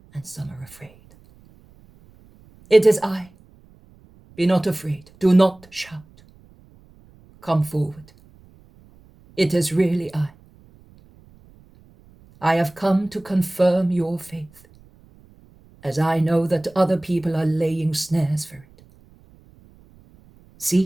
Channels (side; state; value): right; noise; rumble, 27 dB below the sound